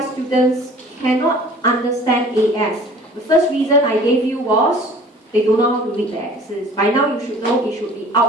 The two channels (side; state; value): both; normal; correlation 0.48